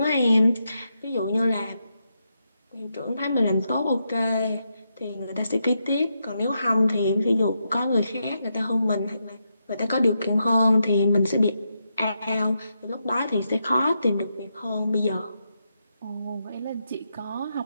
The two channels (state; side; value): inverted; both; correlation -0.84